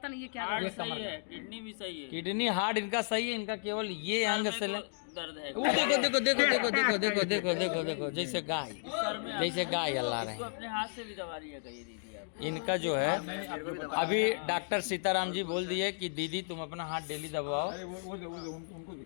नहीं ये क्या हार्ट सही है, किडनी भी सही है। किडनी हार्ट इनका सही है, इनका केवल ये अंग से दर्द है। देखो जैसे गाय अल्लाह रहे हैं। अपने हाथ से भी दवा लिया करिए दीदी आप। इनका जो है अभी डॉक्टर सीताराम जी बोल दिए कि दीदी तुम अपना हाथ डेली दबाओ।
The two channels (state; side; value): silent; right; digital silence